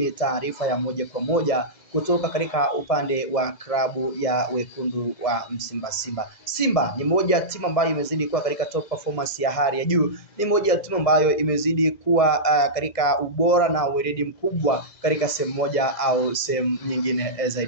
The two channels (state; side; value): late; right; 2.0 ms